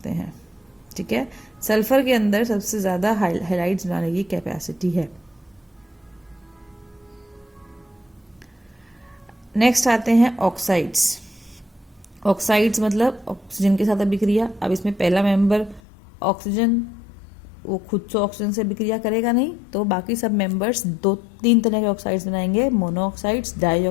हैं। ठीक है। सल्फर के अंदर सबसे ज्यादा हेलाइड्स बनाने की कैपेसिटी है। नेक्स्ट आते हैं ऑक्साइड्स। ऑक्साइड्स मतलब ऑक्सीजन के साथ अभिक्रिया। अब इसमें पहला मेंबर ऑक्सीजन, वो खुद से ऑक्सीजन से अभिक्रिया करेगा नहीं, तो बाकी सब मेंबर्स 2-3 तरह के ऑक्साइड्स बनाएंगे, मोनोऑक्साइड्स,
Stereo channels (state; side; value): drops out; right; at 15.8 s